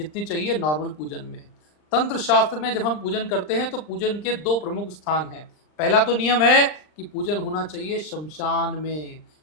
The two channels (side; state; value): right; late; 39 ms